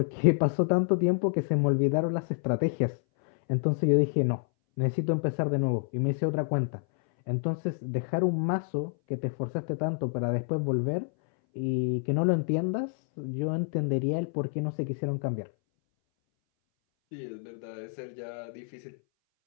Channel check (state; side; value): silent; right; 59 dB below the other